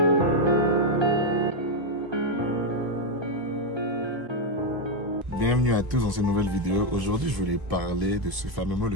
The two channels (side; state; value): left; late; 1.3 ms